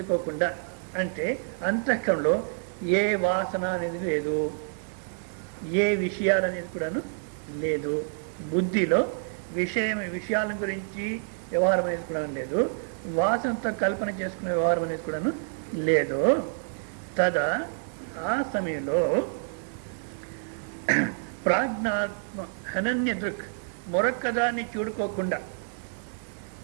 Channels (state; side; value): silent; left; digital silence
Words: అంటే అంతఃకరణలో ఏ వాసన అనేది లేదు, ఏ విషయాలు అనేది కూడాను లేదు, బుద్ధిలో విషయాల గురించి వ్యవహారం అనేది కూడా లేదు, వాసనతో కల్పన చేసుకునే వ్యవహారం అనేది కూడాను లేదు. తదా ఆ సమయంలో ప్రాజ్ఞాత్మ అనన్య దృక్, మరొక్క దాన్ని చూడుకోకుండా,